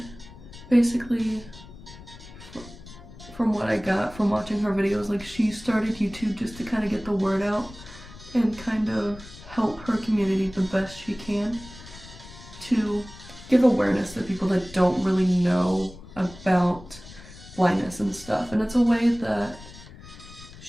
basically from what I got from watching her videos, like, she started YouTube just to kind of get the word out and kind of help her community the best she can to give awareness to people that don't really know about blindness and stuff. And it's a way that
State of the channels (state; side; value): noise; left; rumble, 18 dB below the sound